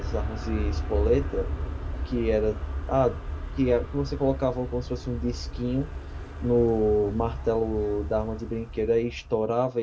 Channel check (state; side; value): identical; both; correlation 1.00